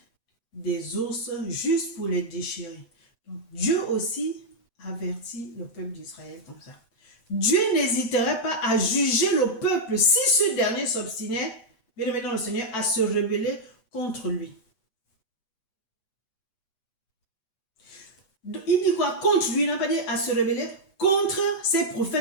des ours juste pour les déchirer. Donc, Dieu aussi avertit le peuple d'Israël comme ça. Dieu n'hésiterait pas à juger le peuple si ce dernier s'obstinait, bien aimé dans le Seigneur, à se rebeller contre lui. Il dit quoi? Contre lui, il n'a pas dit à se rebeller. Contre ses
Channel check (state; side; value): late; right; 8.1 ms